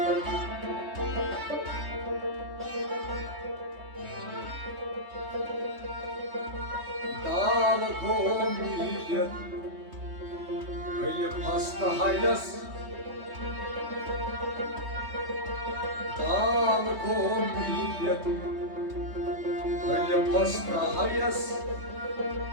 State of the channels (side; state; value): left; late; 3.2 ms